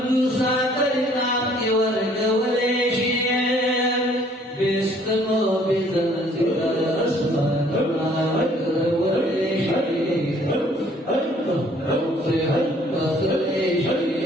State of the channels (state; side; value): normal; both; correlation 0.59